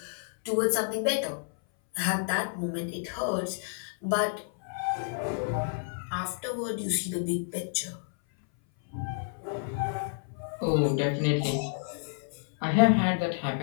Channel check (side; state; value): right; silent; 58 dB below the other